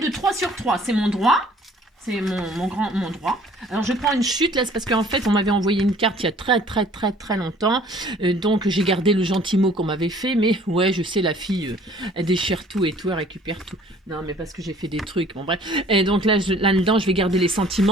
de 3 sur 3. C'est mon droit. C'est mon droit. Alors, je prends une chute, là, c'est parce qu'en fait, on m'avait envoyé une carte il y a très longtemps. Donc, j'ai gardé le gentil mot qu'on m'avait fait. Mais, ouais, je sais, la fille, elle déchire tout et tout, elle récupère tout. Non, mais parce que j'ai fait des trucs, bon, bref. Et donc, là-dedans, je vais garder les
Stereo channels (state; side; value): normal; both; correlation 0.54